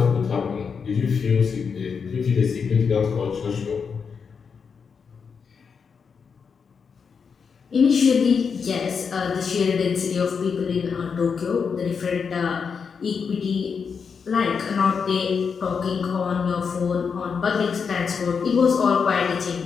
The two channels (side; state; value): right; quieter; 6.0 dB